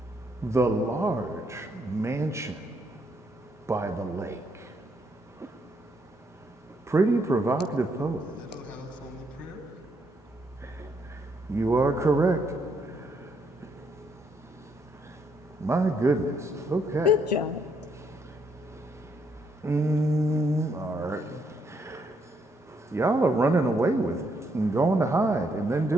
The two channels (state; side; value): normal; both; correlation 0.74